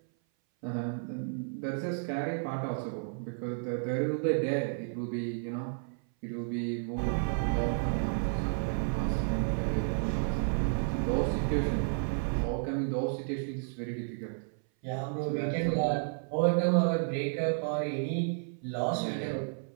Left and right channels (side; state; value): left; silent; 56 dB below the other